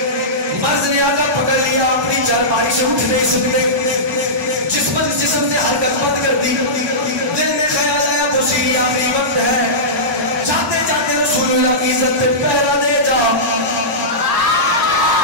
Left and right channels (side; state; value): both; normal; correlation -0.16